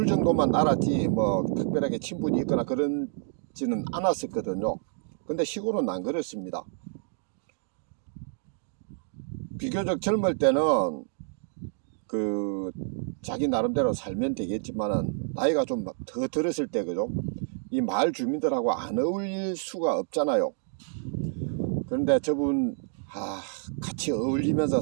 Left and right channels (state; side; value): silent; left; digital silence